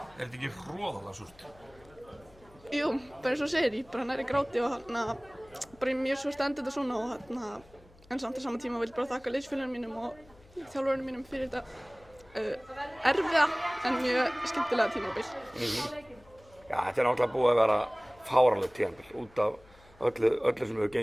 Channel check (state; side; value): noise; left; hum, 26 dB below the sound